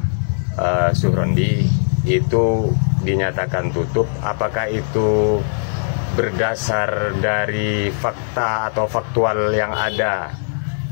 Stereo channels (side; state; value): right; silent; 63 dB below the other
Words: Surandi itu dinyatakan tutup. Apakah itu berdasar dari fakta atau faktual yang ada